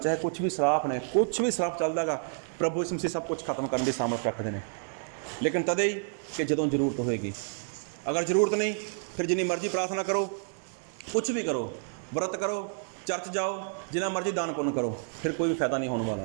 ਕੁਛ ਵੀ ਸਰਾਪ ਨੇ, ਕੁਛ ਵੀ ਸਰਾਪ ਚੱਲਦਾ ਗਾ, ਪ੍ਰਭੂ ਯਿਸੂ ਮਸੀਹ ਸਭ ਕੁਛ ਖਤਮ ਕਰਨ ਦੀ ਸਾਮਰਥ ਰੱਖਦੇ ਨੇ। ਲੇਕਿਨ ਤਦੇ ਹੀ ਕਿ ਜਦੋਂ ਜ਼ਰੂਰਤ ਹੋਏਗੀ। ਅਗਰ ਜ਼ਰੂਰਤ ਨਹੀਂ, ਫਿਰ ਜਿੰਨੀ ਮਰਜ਼ੀ ਪ੍ਰਾਰਥਨਾ ਕਰੋ, ਕੁਛ ਵੀ ਕਰੋ, ਵਰਤ ਕਰੋ, ਚਰਚ ਜਾਓ, ਜਿੰਨਾ ਮਰਜ਼ੀ ਦਾਨ ਪੁੰਨ ਕਰੋ, ਫਿਰ ਕੋਈ ਵੀ ਫਾਇਦਾ ਨਹੀਂ ਹੋਣ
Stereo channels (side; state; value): left; silent; digital silence